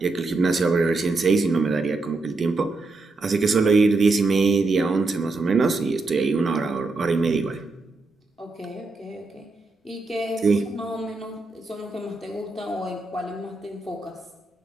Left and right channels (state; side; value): quieter; left; 3.5 dB